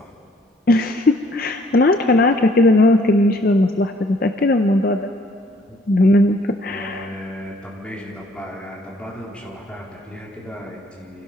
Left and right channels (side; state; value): both; normal; correlation 0.61